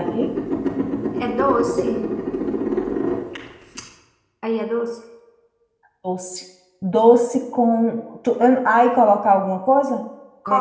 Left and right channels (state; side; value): identical; both; correlation 1.00